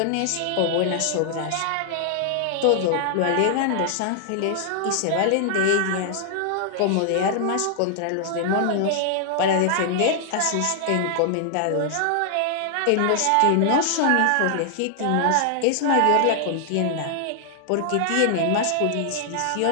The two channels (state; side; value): different; both; correlation -0.01